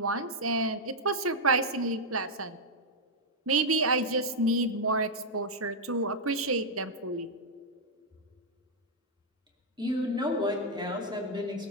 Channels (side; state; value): both; normal; correlation -0.03